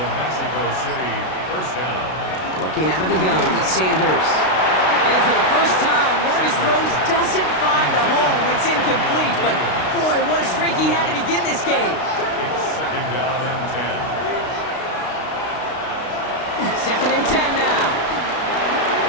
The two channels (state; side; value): late; right; 32 ms